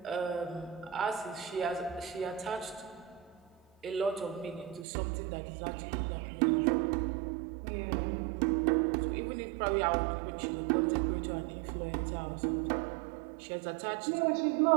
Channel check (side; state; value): left; drops out; at 4.9 s